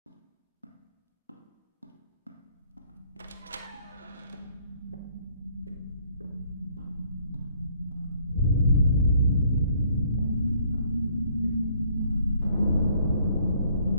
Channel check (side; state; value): both; inverted; correlation -0.63